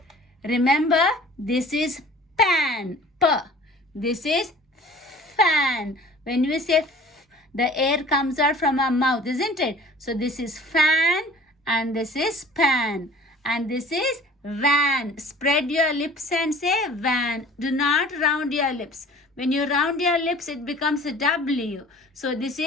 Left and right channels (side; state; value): both; normal; correlation 0.46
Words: Remember, this is pan. P. This is fan. When we say f, the air comes out from our mouth, isn't it? So this is fan and this is pan. And this is van. Spread your lips and say van. Do not round your lips. When you round your lips, it becomes a W. So this